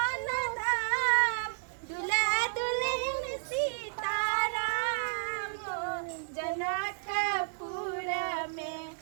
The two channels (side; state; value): left; silent; digital silence